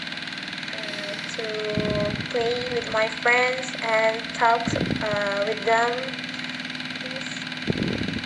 to play with my friends and talk with them. Because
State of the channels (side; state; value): both; identical; correlation 1.00